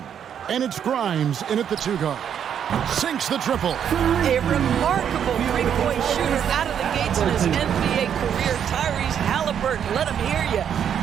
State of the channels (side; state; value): left; quieter; 8.7 dB